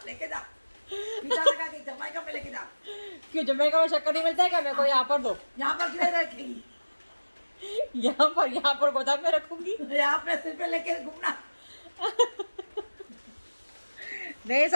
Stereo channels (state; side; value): inverted; both; correlation -1.00